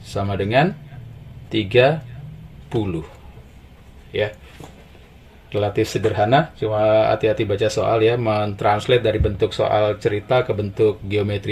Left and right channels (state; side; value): identical; both; correlation 1.00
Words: Sama dengan 30. Ya. Relatif sederhana, cuma hati-hati baca soal ya, mentranslate dari bentuk soal cerita ke bentuk